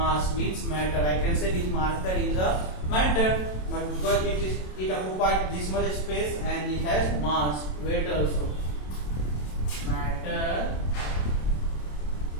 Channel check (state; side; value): late; right; 27 ms